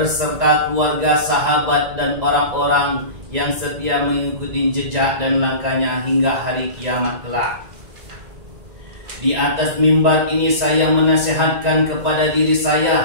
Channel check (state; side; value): late; left; 1.9 ms